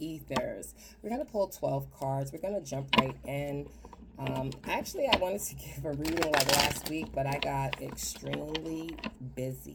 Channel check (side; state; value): both; identical; correlation 1.00